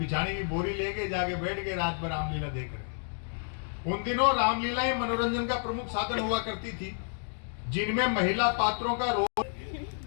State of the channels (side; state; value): right; silent; 58 dB below the other